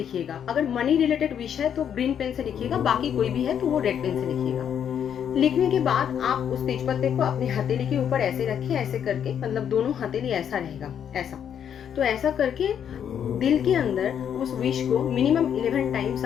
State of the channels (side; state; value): right; quieter; 8.7 dB